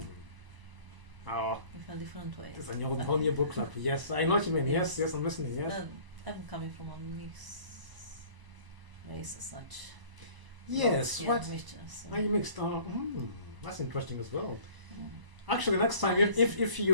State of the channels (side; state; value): left; late; 1.0 ms